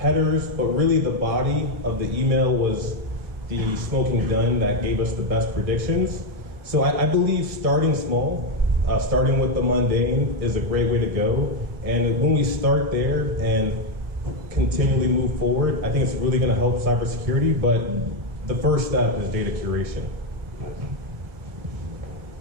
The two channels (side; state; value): left; late; 1.8 ms